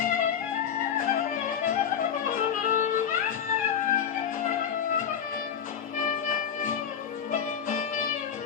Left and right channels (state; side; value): quieter; right; 8.2 dB